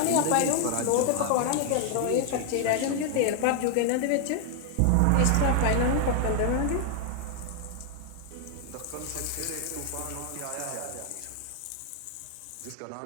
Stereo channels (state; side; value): different; both; correlation 0.00